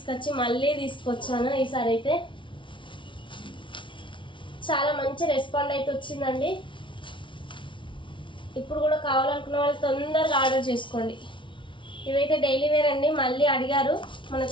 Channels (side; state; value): right; late; 0.24 ms